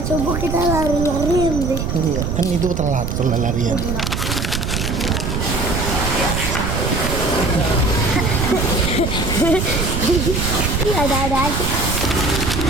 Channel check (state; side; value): noise; right; rumble, 2 dB below the sound